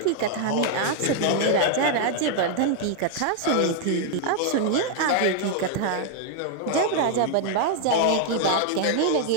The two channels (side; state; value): both; different; correlation 0.00